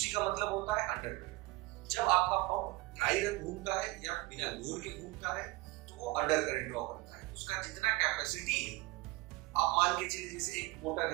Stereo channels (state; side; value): quieter; left; 21.3 dB